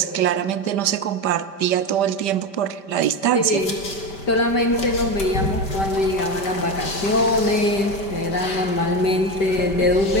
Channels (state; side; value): late; right; 5.1 ms